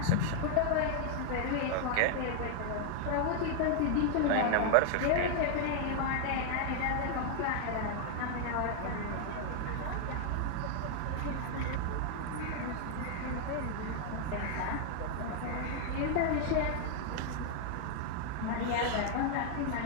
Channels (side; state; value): both; different; correlation 0.00